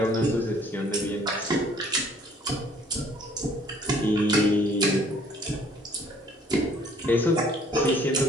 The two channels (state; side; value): normal; both; correlation 0.58